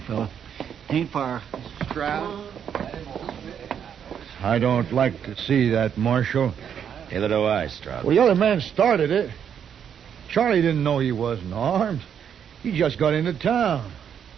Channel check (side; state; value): left; quieter; 8.3 dB